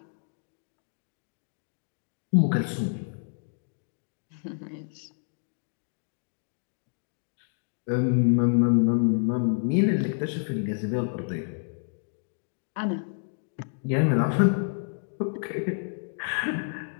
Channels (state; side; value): silent; right; digital silence